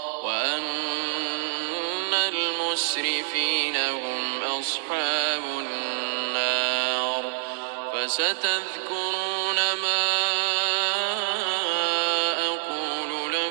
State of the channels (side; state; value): left; silent; 61 dB below the other